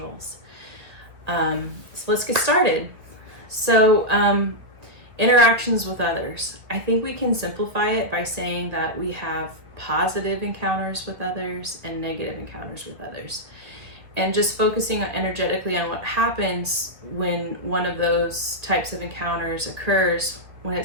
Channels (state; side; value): late; left; 1.6 ms